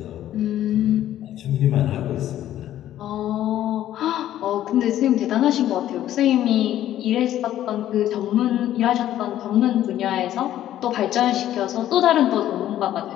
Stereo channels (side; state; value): right; quieter; 12.4 dB